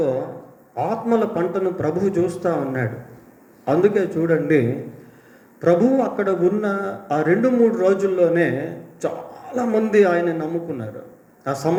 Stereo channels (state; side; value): identical; both; correlation 1.00